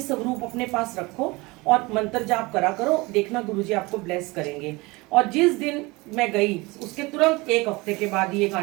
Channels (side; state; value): left; quieter; 23.6 dB